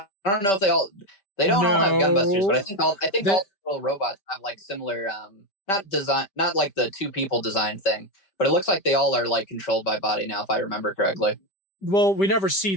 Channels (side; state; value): right; late; 5.1 ms